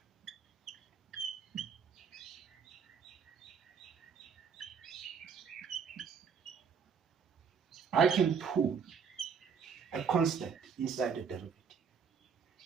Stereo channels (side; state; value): left; quieter; 6.4 dB